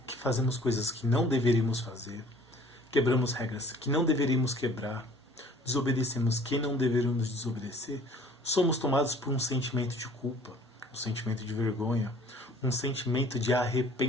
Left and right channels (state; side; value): normal; both; correlation 0.53